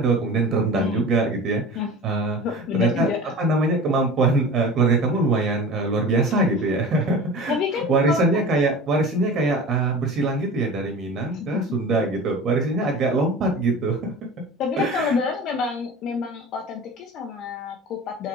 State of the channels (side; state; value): both; normal; correlation 0.36